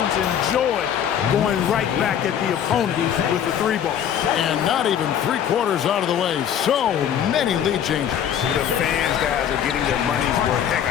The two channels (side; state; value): right; quieter; 9.2 dB